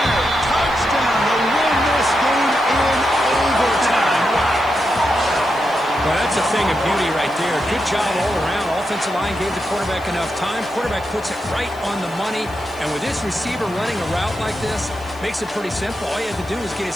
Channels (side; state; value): left; noise; hiss, 25 dB below the sound